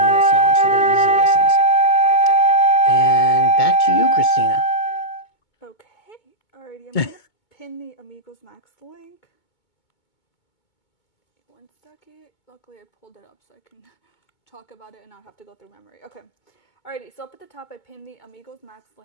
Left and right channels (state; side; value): late; right; 2.2 ms